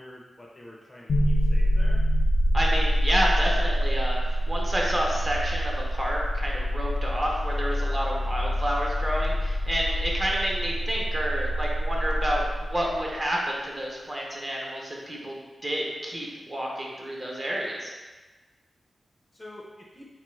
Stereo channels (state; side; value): normal; both; correlation 0.94